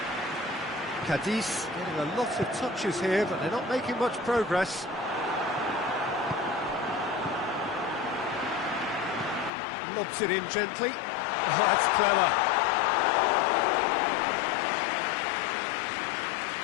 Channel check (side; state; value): right; drops out; at 9.5 s